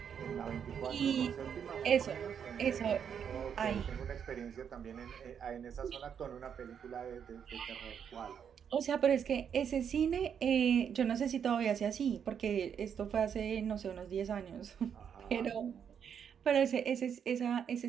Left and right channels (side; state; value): left; quieter; 7.8 dB